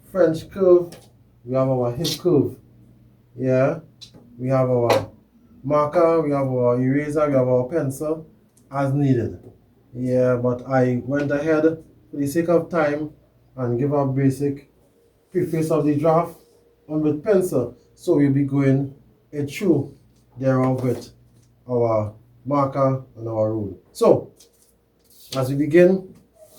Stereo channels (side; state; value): both; identical; correlation 1.00